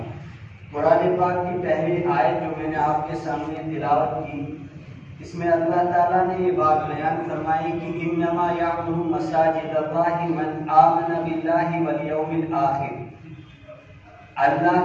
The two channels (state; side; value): identical; both; correlation 1.00